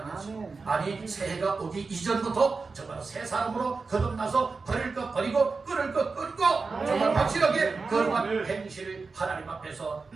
하시고 아니 새해가 오기 이전부터 정말 새 사람으로 거듭나서 버릴 것 버리고 끊을 것 끊고 정말 확실하게 거룩한 행실을 하나님 앞에서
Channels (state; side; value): quieter; left; 4.3 dB